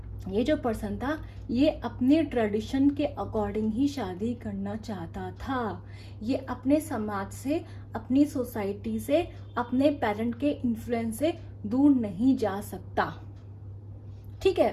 ये जो पर्सन था ये अपने ट्रेडिशन के अकॉर्डिंग ही शादी करना चाहता था। ये अपने समाज से, अपनी सोसाइटी से, अपने पेरेंट के इन्फ्लुएंस से दूर नहीं जा सकता। ठीक है,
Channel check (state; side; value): identical; both; correlation 1.00